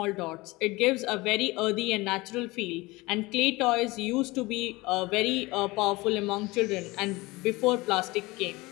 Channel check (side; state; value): right; quieter; 22.0 dB